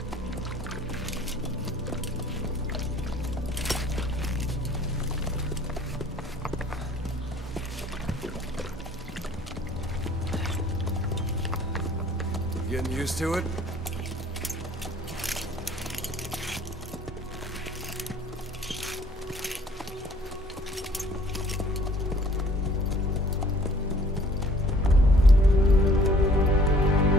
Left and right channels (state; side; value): normal; both; correlation 0.55